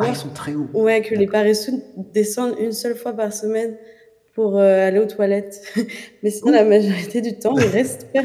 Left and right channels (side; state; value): both; identical; correlation 1.00